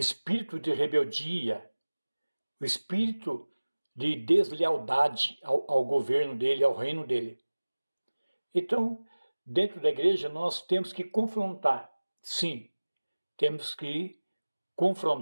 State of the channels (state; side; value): inverted; both; correlation -1.00